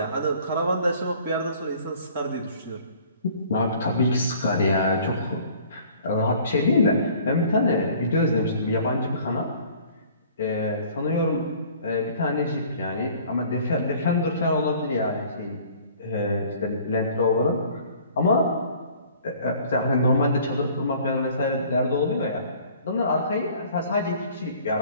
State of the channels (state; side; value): inverted; both; correlation -0.52